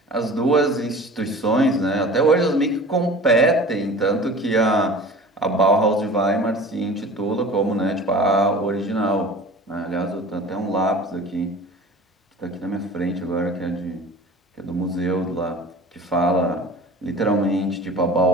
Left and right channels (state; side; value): normal; both; correlation 0.41